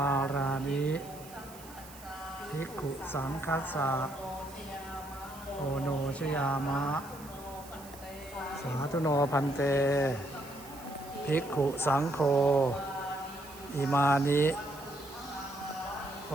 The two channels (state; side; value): noise; right; hiss, 19 dB below the sound